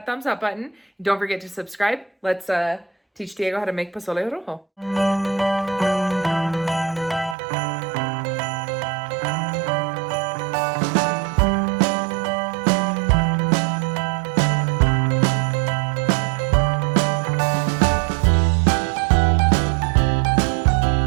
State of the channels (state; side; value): drops out; left; at 7.4 s